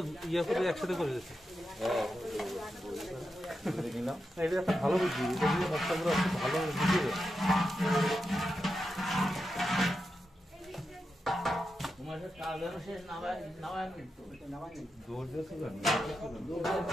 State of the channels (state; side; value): normal; both; correlation 0.88